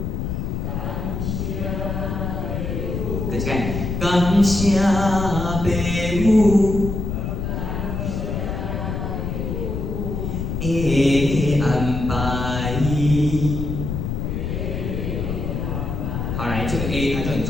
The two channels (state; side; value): noise; left; rumble, 3 dB below the sound